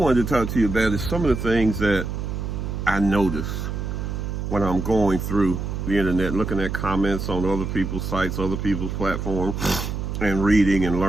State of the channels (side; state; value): right; noise; hum, 4 dB below the sound